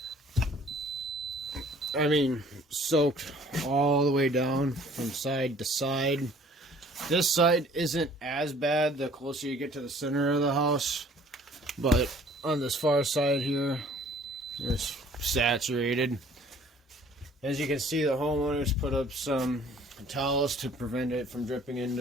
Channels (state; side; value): normal; both; correlation 0.55